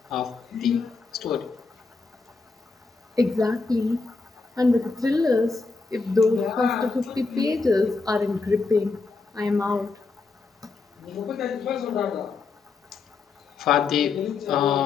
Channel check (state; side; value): quieter; right; 4.2 dB